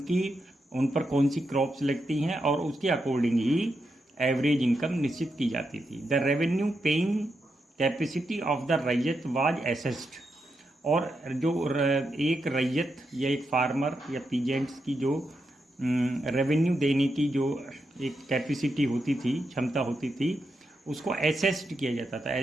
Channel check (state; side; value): normal; both; correlation 0.85